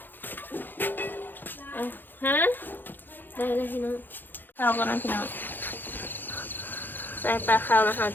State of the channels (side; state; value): right; late; 0.092 ms